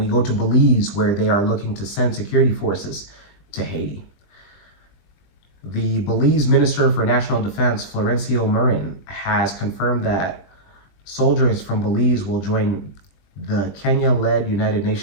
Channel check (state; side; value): late; right; 21 ms